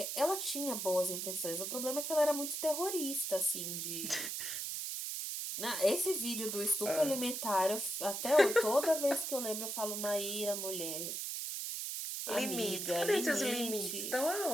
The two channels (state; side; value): noise; right; hiss, 3 dB below the sound